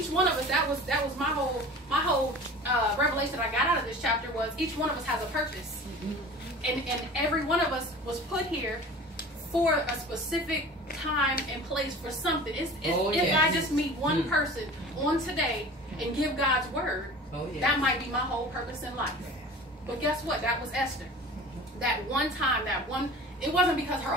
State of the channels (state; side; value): normal; both; correlation 0.40